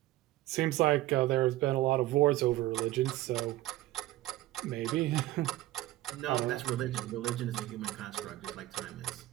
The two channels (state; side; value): quieter; left; 16.4 dB